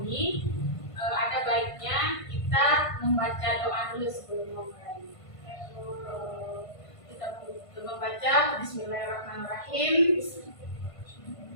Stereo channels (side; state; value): right; late; 1.5 ms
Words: ada baiknya kita membaca doa dulu sebelum memulai. Kita membaca Bismillahirrahmanirrahim